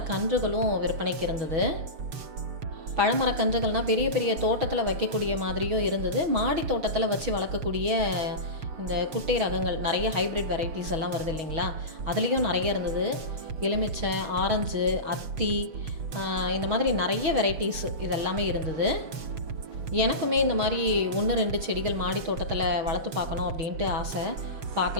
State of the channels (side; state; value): left; late; 6.6 ms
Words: விற்பனைக்கு இருந்தது. பழமரக்கன்றுகள்னால் பெரிய பெரிய தோட்டத்தில் வைக்கக்கூடிய மாதிரியும் இருந்தது. மாடி தோட்டத்தில் வச்சு வளர்க்கக்கூடிய இந்த குட்டை ரகங்கள், நிறைய ஹைப்ரிட் வெரைட்டிஸ் எல்லாம் வருது இல்லைங்களா, அதுலேயும் நிறைய இருந்தது. எலுமிச்சை, ஆரஞ்சு, அத்தி, இந்த மாதிரி நிறைய வெரைட்டிஸ் இதெல்லாமே இருந்தது. எனக்குமே இந்த மாதிரி 1-2 செடிகள் மாடி தோட்டத்தில் வளர்த்து பார்க்கணும் அப்படின்ட்டு ஆசை.